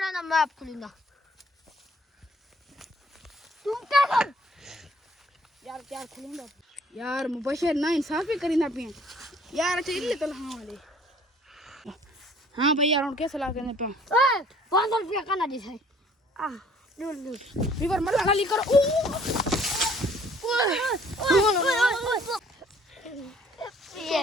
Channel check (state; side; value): normal; both; correlation 0.58